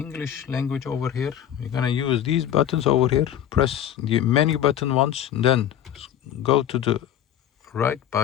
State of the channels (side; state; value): right; quieter; 10.5 dB